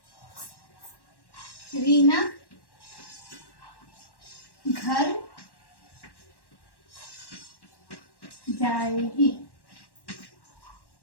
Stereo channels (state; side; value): late; right; 1.1 ms